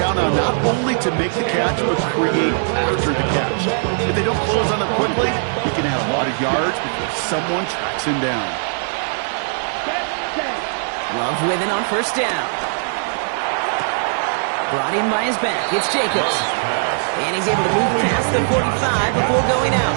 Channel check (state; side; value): silent; left; digital silence